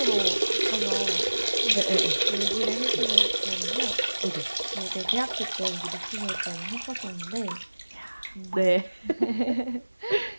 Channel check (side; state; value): both; inverted; correlation -1.00